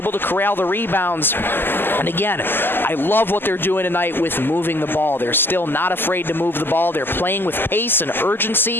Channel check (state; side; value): late; right; 0.098 ms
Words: to corral the rebounds. And again, I love what they're doing tonight with moving the ball. They're still not afraid to move the ball. They're playing with pace and